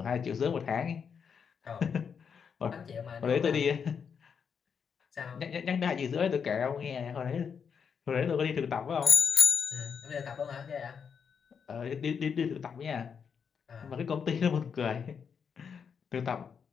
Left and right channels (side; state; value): right; quieter; 6.7 dB